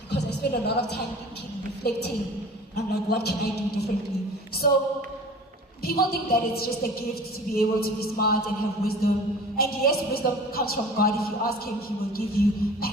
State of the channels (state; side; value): normal; both; correlation 0.42